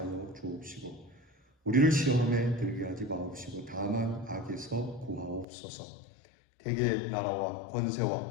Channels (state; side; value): drops out; right; at 5.5 s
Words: 주옵시고 우리를 시험에 들게 하지 마옵시고 다만 악에서 구하옵소서. 대개 나라와